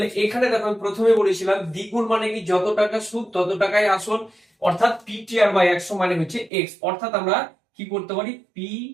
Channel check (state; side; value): drops out; left; at 6.5 s